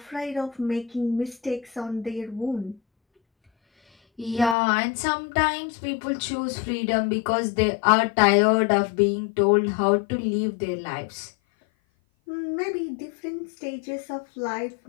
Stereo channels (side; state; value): right; drops out; at 4.5 s